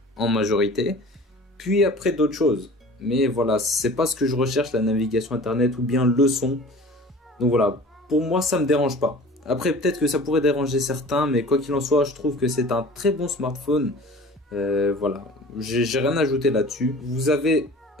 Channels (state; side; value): normal; both; correlation 0.43